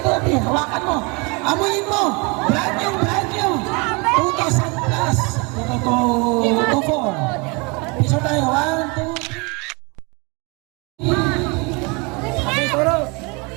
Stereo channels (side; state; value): left; quieter; 29.4 dB